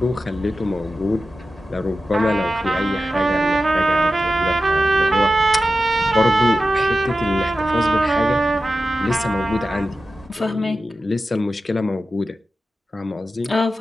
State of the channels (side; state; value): both; normal; correlation 0.92